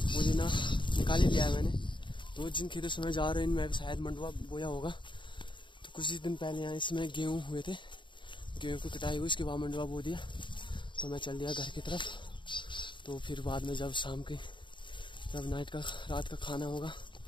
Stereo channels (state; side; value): late; right; 0.23 ms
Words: निकाल ही लिया है मैंने। तो जिन खेतों से मैं जा रहा हूँ इनमें भी शायद मंडुआ बोया होगा। तो कुछ ही दिन पहले यहाँ इसमें गेहूँ हुए थे, गेहूँ की कटाई हुई, उसके बाद मंडुआ बो दिया। तो मैं चल दिया घर की तरफ। तो फिर बाद में जब रात का खाना होगा,